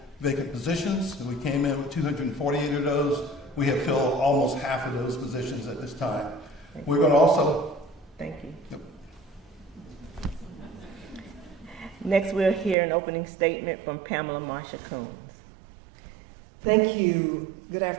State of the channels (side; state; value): left; drops out; at 12.8 s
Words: vacant positions. We came in with 248 of those. We have filled almost half of those positions at this time. We're going to also... Thank you. Yep. Next, we'll hear an opening statement from Pamela Marsha Coons. Thank you. Good